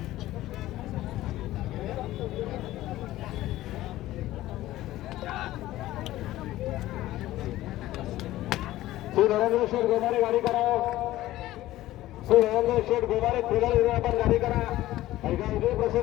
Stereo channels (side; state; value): right; quieter; 15.6 dB